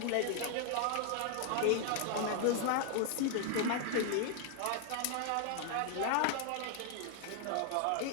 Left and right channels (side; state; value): both; different; correlation 0.00